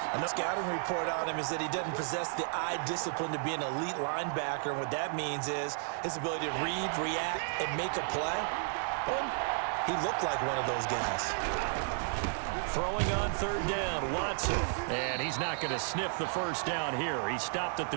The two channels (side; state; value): left; silent; 56 dB below the other